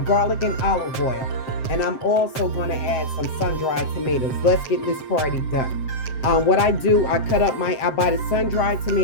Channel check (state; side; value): late; right; 7.6 ms